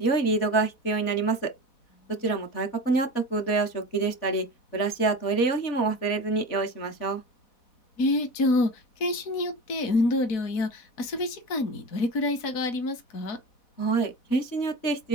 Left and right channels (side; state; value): right; late; 4.1 ms